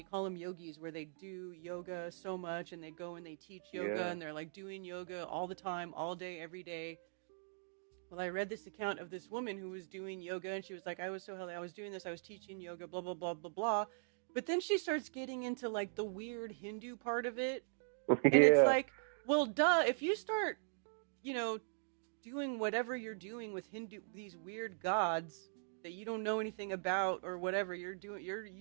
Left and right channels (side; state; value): left; silent; digital silence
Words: call them yogis, where they do yoga so much, and they go and they teach yoga, and they're like doing yoga all the time, all day, every day. Well, I read this account of this woman who was doing yoga, and she was like, I was so healthy, I was doing this, I was teaching yoga, blah, blah, blah, blah, blah. But then she starts getting into like the weird Hindu part of it. And it's like, well, duh, if you start, you know, doing whatever you're doing with these weird gods that you don't know anything about or whatever you're doing,